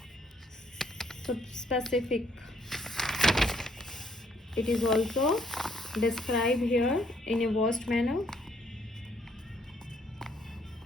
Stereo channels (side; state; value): both; normal; correlation 0.68